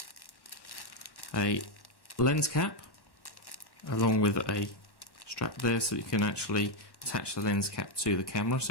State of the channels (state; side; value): late; right; 1.1 ms